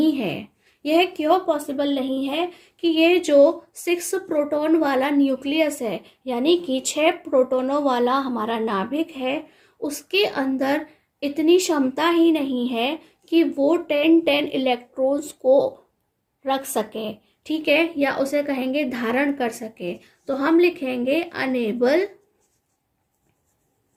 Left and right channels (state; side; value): identical; both; correlation 1.00